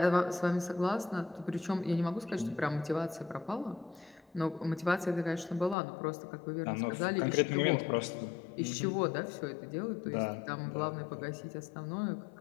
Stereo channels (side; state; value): right; drops out; at 5.8 s